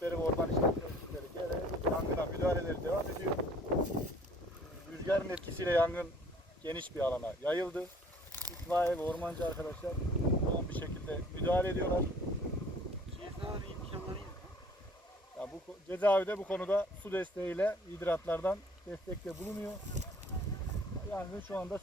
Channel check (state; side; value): normal; both; correlation 0.54